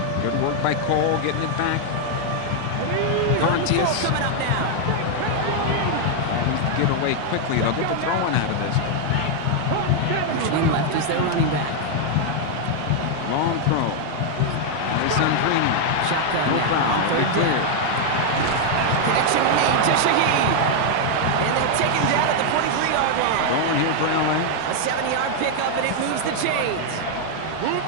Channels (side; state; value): both; different; correlation 0.00